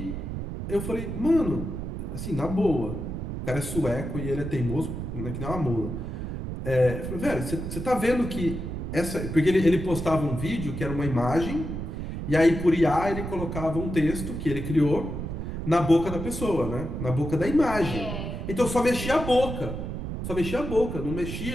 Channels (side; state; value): right; noise; rumble, 5 dB below the sound